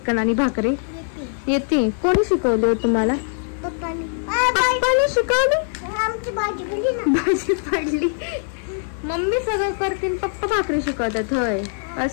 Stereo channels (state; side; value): silent; right; digital silence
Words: आणि भाकरी? येते. कोणी शिकवली हो तुम्हाला? पप्पानी शिकवली. आमची भाजी पडली ना. भाजी पडली. मम्मी सगळं करतील, पप्पा भाकरी शिकवतात. होय,